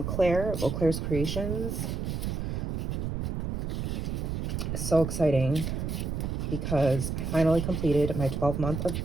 Claire of Claire's Creations. So exciting, because I finally completed my 12-month of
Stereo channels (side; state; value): right; noise; rumble, 2 dB below the sound